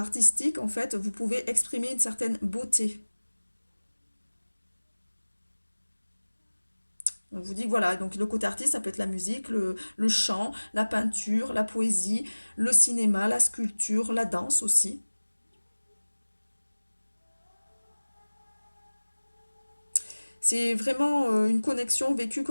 en fait, vous pouvez exprimer une certaine beauté. On vous dit que voilà, donc le côté artiste, ça peut être la musique, le chant, la peinture, la poésie, le cinéma, la sculpture, la danse aussi. C'est vraiment une connexion vécue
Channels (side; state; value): both; inverted; correlation -1.00